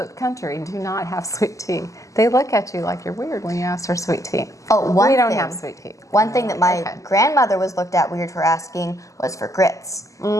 country do not have sweet tea. They look at you like you're weird when you ask for sweet tea. Oh, one We don't thing. have sweet tea. One thing that my Okay. grandmother was looked at weird for asking was for grits.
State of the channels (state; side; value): late; right; 0.16 ms